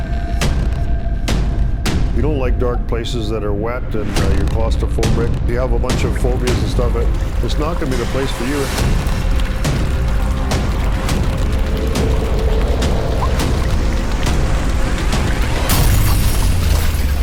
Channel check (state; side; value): identical; both; correlation 1.00